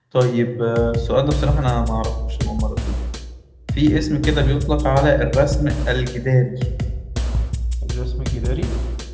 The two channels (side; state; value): both; identical; correlation 1.00